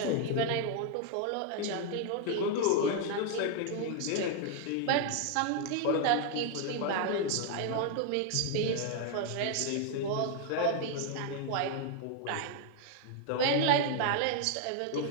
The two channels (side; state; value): both; different; correlation 0.00